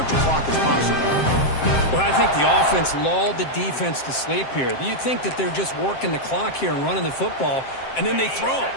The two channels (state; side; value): late; right; 7.6 ms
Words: clock as possible. Well, I think the offense lulled the defense to sleep here. You think that they're just working the clock here and running the football, and then they throw